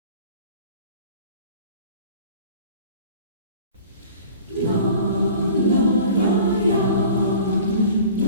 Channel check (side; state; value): both; inverted; correlation -0.45